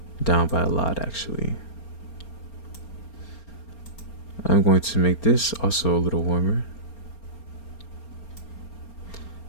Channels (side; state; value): right; late; 4.3 ms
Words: down by a lot. Actually, I'm going to make this also a little warmer.